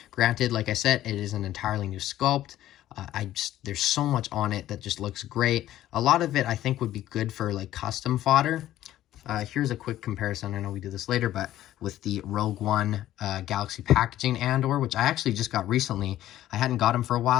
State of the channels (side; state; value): right; quieter; 13.5 dB